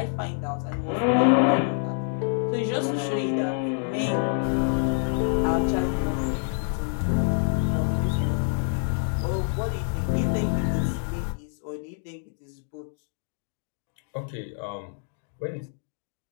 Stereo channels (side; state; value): right; silent; 60 dB below the other